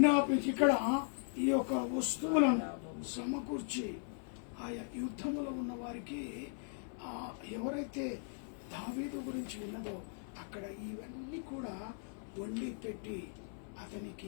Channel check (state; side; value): silent; right; 52 dB below the other